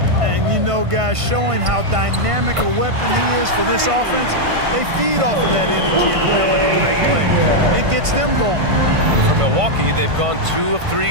And you know, guys, showing how dynamic a weapon he is for this offense, they feed off of that energy and ability to make plays. It gets them going. For Milwaukee, they've gone 2 of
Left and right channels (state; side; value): late; left; 1.5 ms